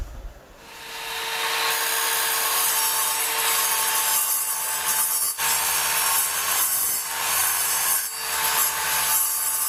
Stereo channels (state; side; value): identical; both; correlation 1.00